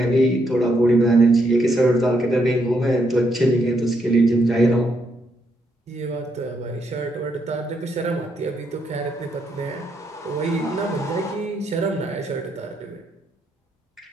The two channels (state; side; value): normal; both; correlation 0.76